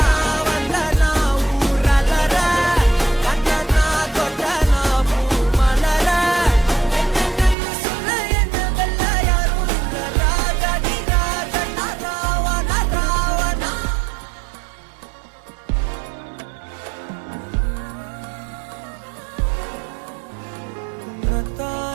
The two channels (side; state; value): left; drops out; at 7.6 s